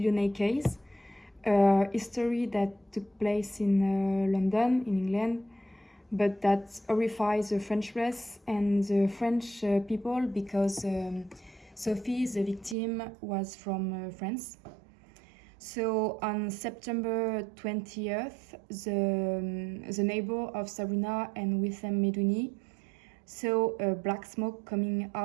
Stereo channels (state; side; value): drops out; left; at 12.8 s